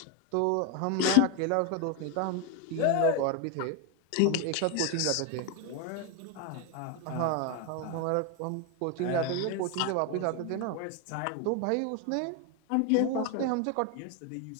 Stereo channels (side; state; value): both; different; correlation 0.01